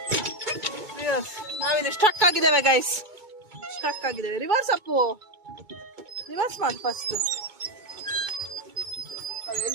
ನಾವಿಲ್ಲಿ ಸ್ಟಕ್ ಆಗಿದ್ದೇವೆ ಗೈಸ್, ರಿವರ್ಸ್ ಅಪ್ಪು, ರಿವರ್ಸ್ ಮಾಡಿ ಫಸ್ಟ್.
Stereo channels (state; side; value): late; left; 2.2 ms